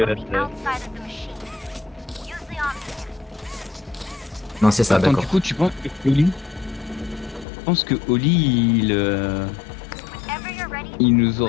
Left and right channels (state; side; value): drops out; right; at 7.5 s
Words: on the that's outside of the machine. Use the omni. Non, c'est ça, Attends, d'accord. du coup tu penses que Oli... Je pense que Oli Whenever you're ready, il nous